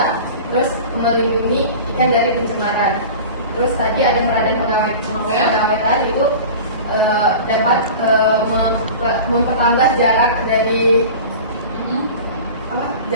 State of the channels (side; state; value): both; inverted; correlation -0.36